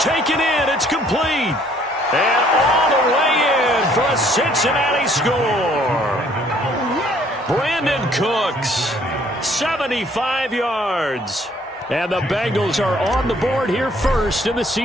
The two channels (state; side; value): normal; both; correlation 0.61